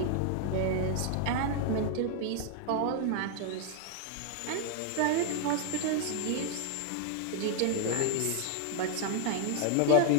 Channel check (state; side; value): different; both; correlation 0.00